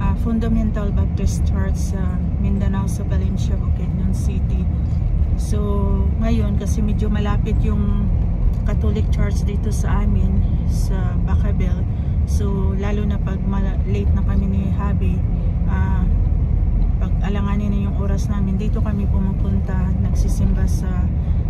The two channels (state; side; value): identical; both; correlation 1.00